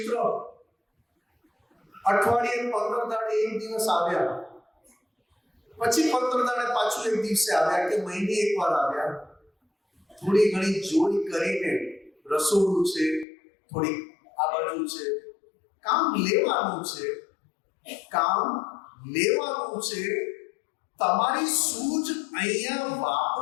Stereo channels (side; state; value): right; drops out; at 13.2 s